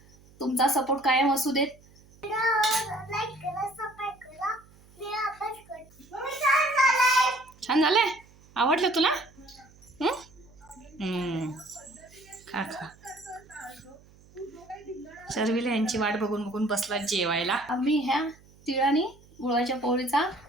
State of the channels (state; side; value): noise; right; hum, 26 dB below the sound